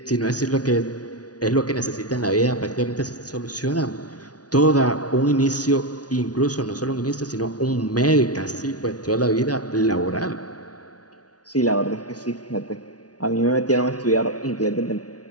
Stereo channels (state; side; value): late; right; 0.68 ms